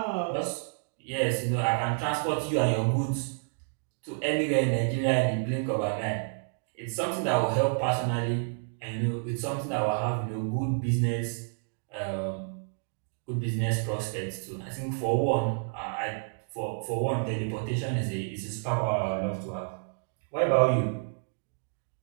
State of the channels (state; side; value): silent; left; digital silence